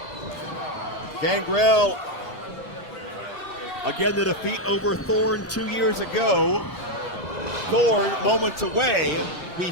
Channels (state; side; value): normal; both; correlation 0.04